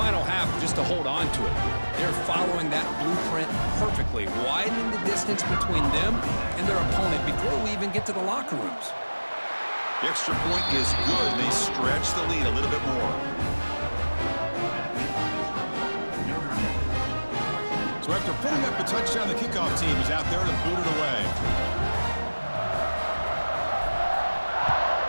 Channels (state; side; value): inverted; both; correlation -1.00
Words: half just to hold on to it. They're following that blueprint perfectly, widening the distance between them and their opponent before we even get to the locker rooms. The extra point is good. They stretch the lead a little bit more. So after putting up a touchdown, the kickoff team is out there to boot it away.